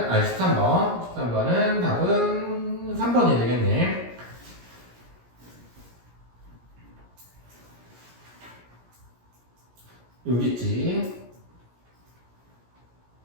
13번. 13번은 답은 3번이 되겠네. 여기 있지.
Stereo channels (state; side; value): late; left; 17 ms